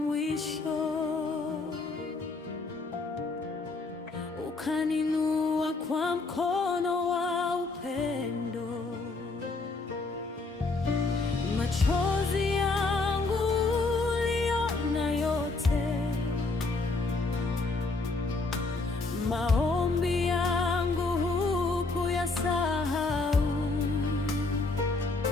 ukaninua kwa mkono wa upendo. Machozi yangu uliona yote, maombi yangu hukuyasahau.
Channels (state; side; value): quieter; right; 3.6 dB